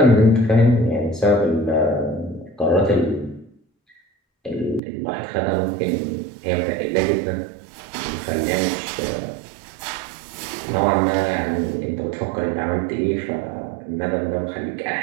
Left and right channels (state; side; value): drops out; left; at 4.8 s